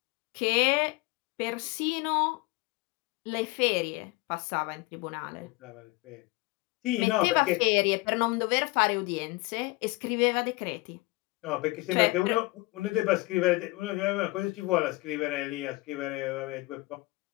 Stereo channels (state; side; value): quieter; right; 22.7 dB